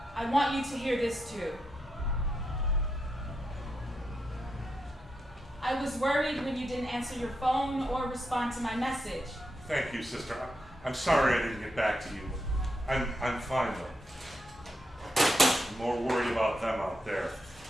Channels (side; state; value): both; normal; correlation 0.84